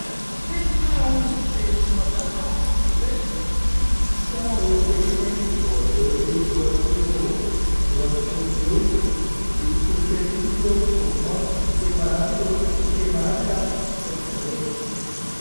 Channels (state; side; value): inverted; both; correlation -1.00